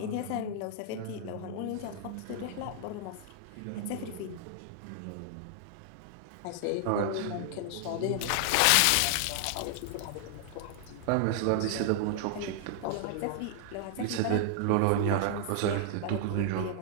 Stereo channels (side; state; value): both; different; correlation 0.00